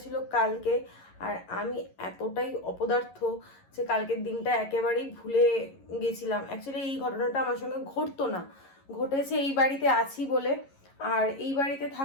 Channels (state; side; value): late; right; 11 ms